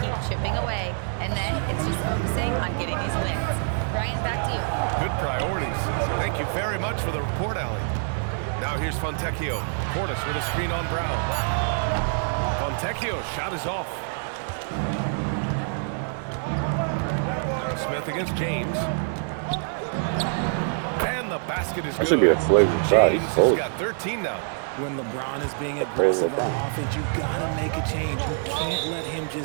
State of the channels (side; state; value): left; silent; digital silence